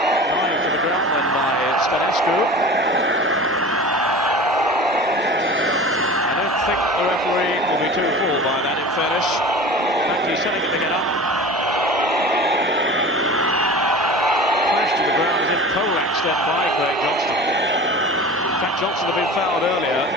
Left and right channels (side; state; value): both; normal; correlation 0.37